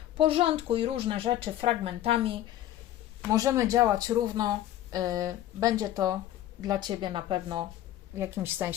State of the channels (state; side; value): quieter; right; 13.0 dB